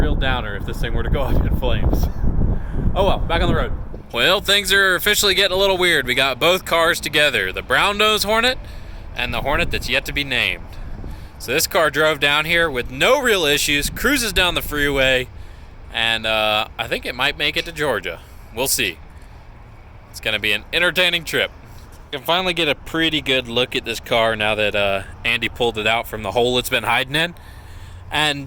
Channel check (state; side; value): identical; both; correlation 1.00